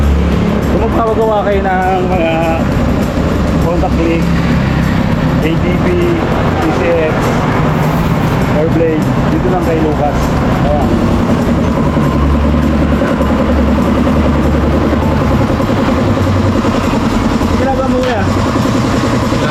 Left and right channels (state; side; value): identical; both; correlation 1.00